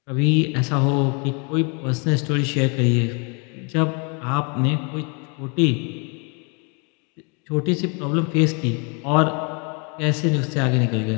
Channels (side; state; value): right; quieter; 34.8 dB